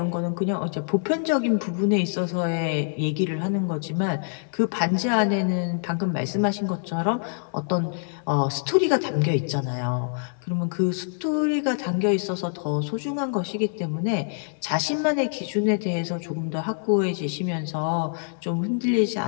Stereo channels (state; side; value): silent; right; digital silence